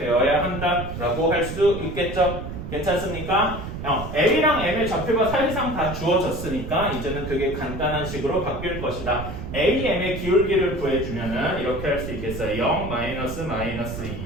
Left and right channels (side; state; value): right; noise; rumble, 8 dB below the sound